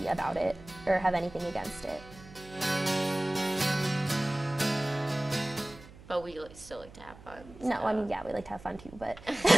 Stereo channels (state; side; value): noise; right; hum, 19 dB below the sound